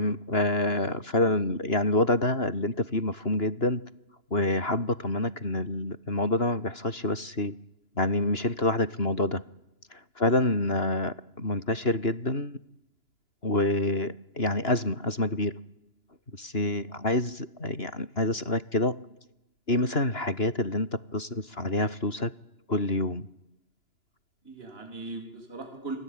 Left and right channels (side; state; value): right; late; 2.9 ms